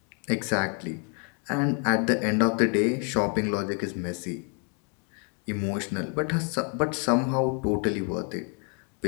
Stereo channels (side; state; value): right; quieter; 38.4 dB